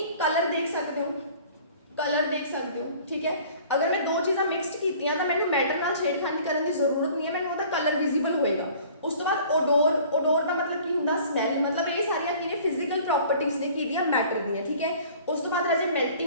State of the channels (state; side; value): inverted; both; correlation -0.49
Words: कलर देख सकते हो, कलर देख सकते हो। ठीक है, अगर मैं 2 चीज़ां मिक्सड कीतियां तो मैनूं मैटर नाल छेड़खानी करन दी जरूरत नहीं है, मैनूं उहदा कलर विजिबल होएगा। उस तो बाद ओडोर, ओडोर का मतलब की हुंदा? स्मैल। मतलब ये सारियां की ने? फिजिकल प्रॉपर्टीज ने की दियां मैटर दियां। ठीक है, उस तो बाद राजे